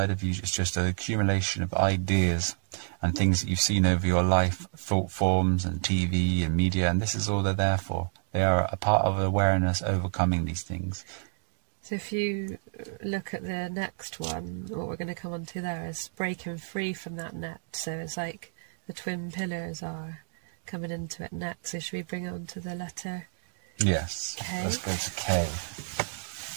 of you is just an accumulation of ideas and things that you've seen over your life, thought forms and TV and media, and this is all they're there for. They are a part of awareness overcoming these things. So if you look at the next one, what we're going to come on to there is breaking free from that net. So it's like the twin pillars are coming into it next. So should we bring it on to the letter? Yes, K? Let's go to K.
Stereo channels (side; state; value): left; silent; digital silence